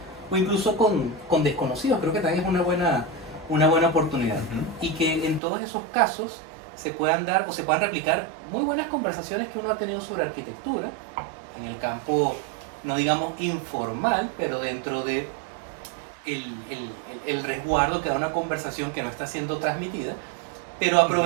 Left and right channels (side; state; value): left; drops out; at 5.4 s